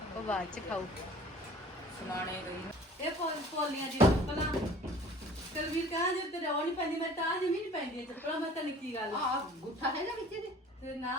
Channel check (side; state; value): both; normal; correlation 0.48